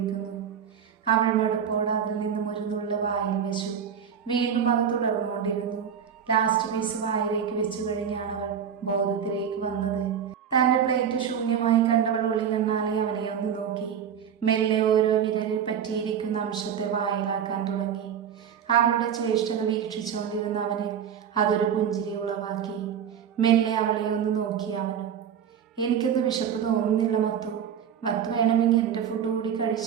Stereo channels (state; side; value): quieter; left; 8.2 dB